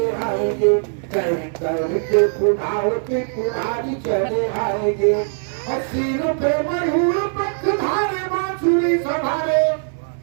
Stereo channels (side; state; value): left; silent; 65 dB below the other